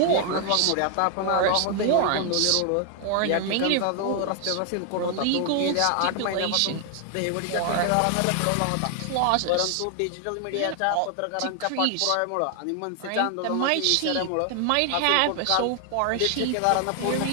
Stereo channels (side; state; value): both; different; correlation 0.00